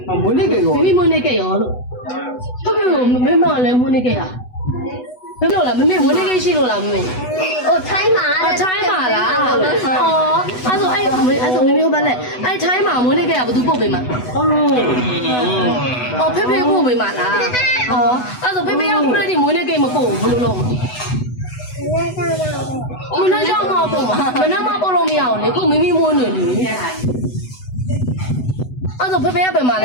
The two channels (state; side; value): late; right; 8.0 ms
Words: မွေးနေ့ကေရောမိမိမွေးနေ့ကေရောလို့ဟုတ်ကဲ့မမေမလည်းမွေးနေ့ကေရမလို့လားမမေမွေးနေ့ကေရှိလို့လားမမေဟိုထိုင်းမှာထိုင်းမှာလားအော်အဲ့ဆိုမမေဘာလဲအဲ့ထိုင်းမှာမွေးနေ့ကေကဘယ်သူပို့ပေးမှာအော်ဖေဖေပို့ပေးမှာလားအော်အဲ့ဆိုဖေဖေကခုတည်းမွေးနေ့ကေမပို့ဘူးဘယ်လိုလုပ်မလဲကြောက်မပို့မှာမနက်မှပို့လို့မရအောင်လေခုမိမိမွေးနေလေအဲ့ဆိုဖေဖေကပဲမှာလ